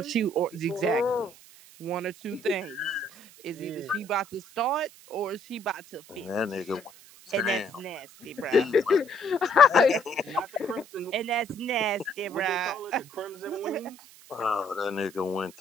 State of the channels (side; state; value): right; noise; hiss, 22 dB below the sound